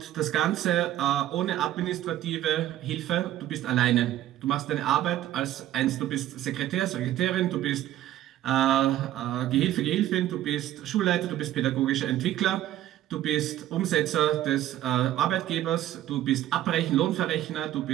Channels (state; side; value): quieter; left; 13.2 dB